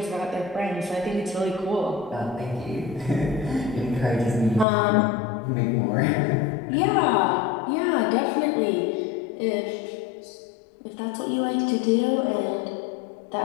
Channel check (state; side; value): drops out; right; at 4.7 s